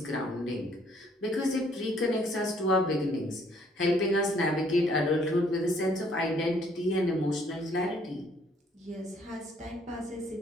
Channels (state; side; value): normal; both; correlation 0.64